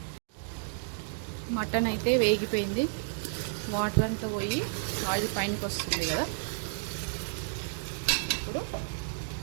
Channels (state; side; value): silent; left; digital silence